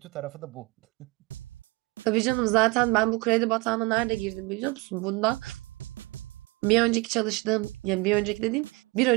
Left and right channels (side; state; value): left; quieter; 24.9 dB